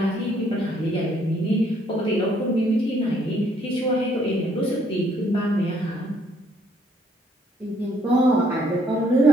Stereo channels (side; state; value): both; normal; correlation 0.67